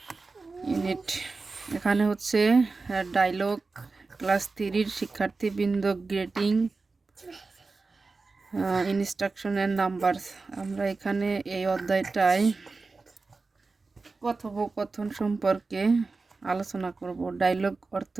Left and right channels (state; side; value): quieter; left; 3.9 dB